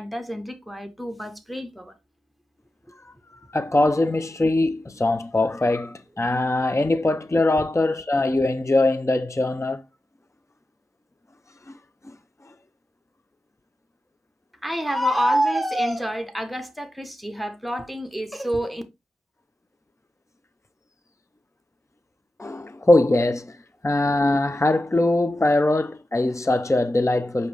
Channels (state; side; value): normal; both; correlation 0.91